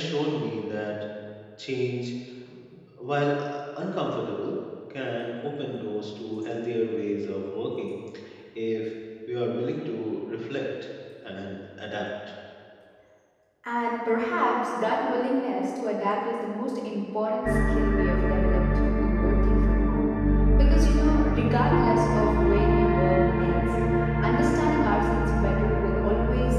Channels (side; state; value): both; identical; correlation 1.00